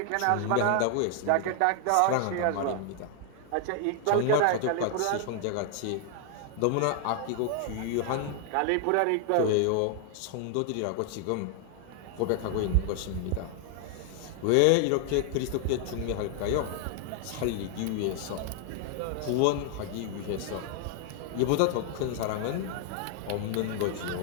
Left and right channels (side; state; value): both; different; correlation 0.00